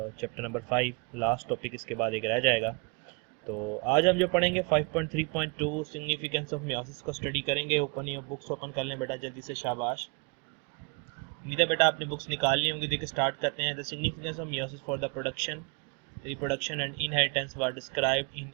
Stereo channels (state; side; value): quieter; left; 32.1 dB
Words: नंबर 5, लास्ट टॉपिक इसके बाद एक रह जाएगा। तो आज हम जो पढ़ेंगे 5.3.2 सिग्निफिकेंस ऑफ मियोसिस को स्टडी करेंगे। ओपन योर बुक्स, ओपन कर लें बेटा जल्दी से, शाबाश। उम्मीद है बेटा आपने बुक्स निकाल ली होंगी। देखिए स्टार्ट करते हैं। The significance of meiosis for the production, reproduction and inheritance were described in